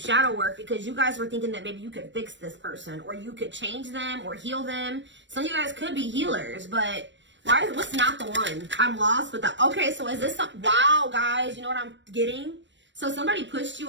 work because you guys were thinking that maybe you could fix this person or you could change them or heal them. Some of you guys could be healers, but what's not the one? I'm lost with that. Okay, so is this wow, guys, you know what I'm getting? So somebody pushed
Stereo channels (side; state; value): left; late; 0.53 ms